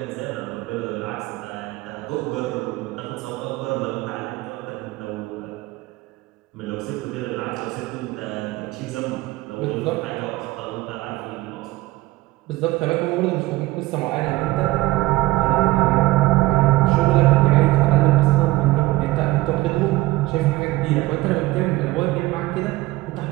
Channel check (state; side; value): quieter; left; 18.7 dB